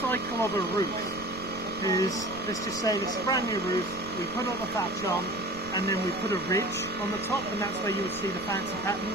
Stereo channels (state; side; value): noise; right; rumble, 18 dB below the sound